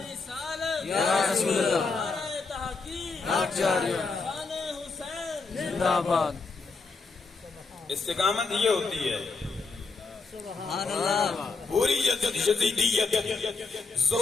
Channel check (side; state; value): right; quieter; 4.2 dB